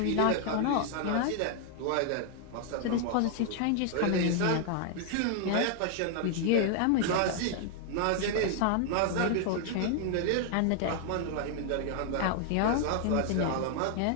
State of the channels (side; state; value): both; different; correlation 0.00